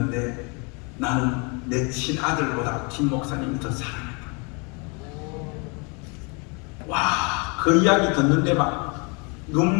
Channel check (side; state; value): right; quieter; 32.3 dB